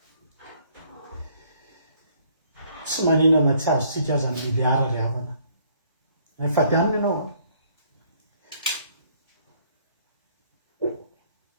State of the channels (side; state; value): both; inverted; correlation -0.64